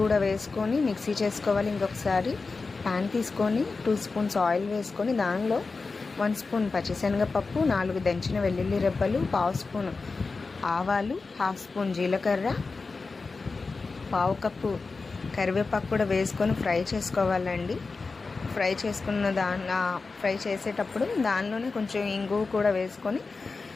కూడా వేసుకొని మిక్సీ చేసుకోవాలి. ఇంకొకసారి ప్యాన్ తీసుకొని 2 స్పూన్స్ ఆయిల్ వేసుకొని దానిలో 1 స్పూన్ పచ్చిశనగపప్పు, 4 దంచిన వెల్లుల్లి రెబ్బలు, 1/2 స్పూన్ ఆవాలు, 1/2 స్పూన్ జీలకర్ర, 1/2 కప్పు కరివేపాకు కూడా వేసుకొని ఫ్రై చేసుకోవాలండి. ఫ్రై చేసేటప్పుడు దానిలోనే కొంచెం ఇంగువ కూడా వేసుకొని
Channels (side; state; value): right; quieter; 4.1 dB